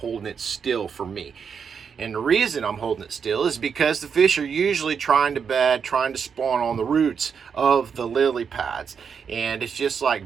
it still for me. And the reason I'm holding it still is because the fish are usually trying to bed, trying to spawn on the roots of the lily pads. And it's just like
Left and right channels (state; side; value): quieter; left; 6.6 dB